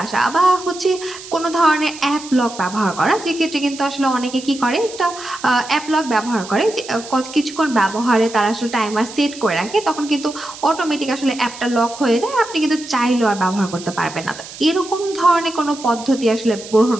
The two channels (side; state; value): right; noise; hiss, 14 dB below the sound